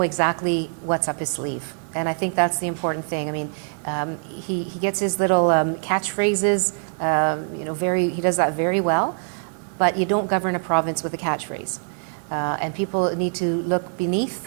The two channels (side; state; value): left; silent; 63 dB below the other